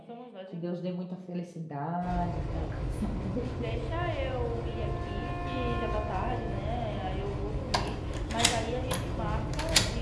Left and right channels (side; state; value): both; identical; correlation 1.00